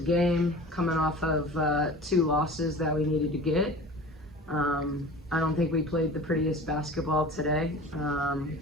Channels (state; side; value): normal; both; correlation 0.39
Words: coming off of 2 losses that we needed to get. I don't think we played the prettiest basketball today,